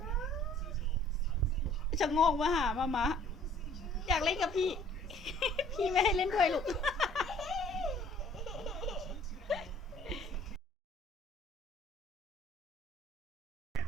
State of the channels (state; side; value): normal; both; correlation 0.55